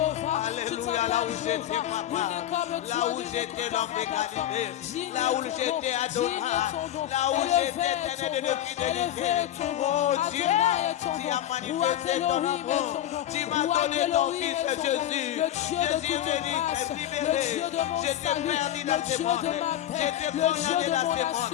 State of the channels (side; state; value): right; quieter; 11.9 dB